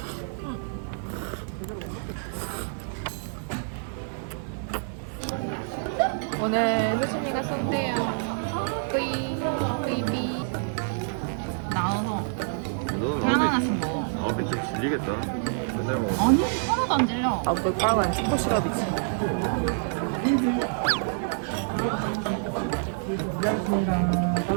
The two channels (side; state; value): left; silent; digital silence